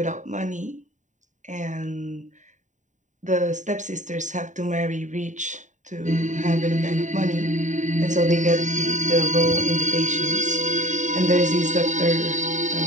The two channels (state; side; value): late; left; 0.36 ms